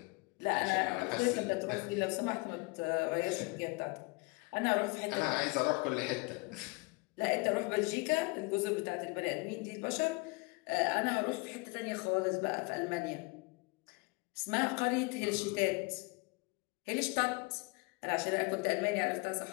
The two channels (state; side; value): quieter; right; 27.7 dB